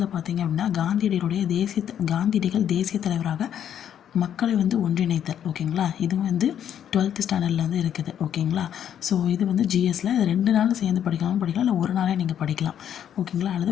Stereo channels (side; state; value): right; quieter; 9.6 dB